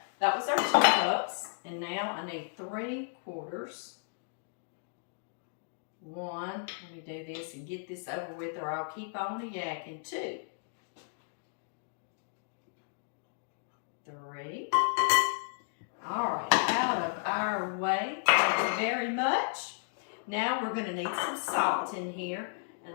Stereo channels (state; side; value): silent; right; digital silence